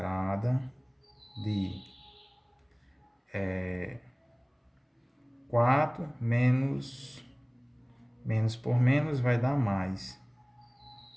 de 4 menos por menos vai dar mais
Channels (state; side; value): identical; both; correlation 1.00